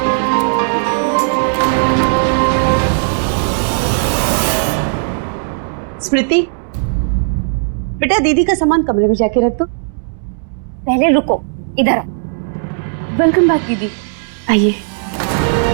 स्मृति, बेटा दीदी का सामान कमरे में जाके रख दो। पहले रुको, इधर आओ। वेलकम बैक दीदी, आइए।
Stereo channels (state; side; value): silent; left; 69 dB below the other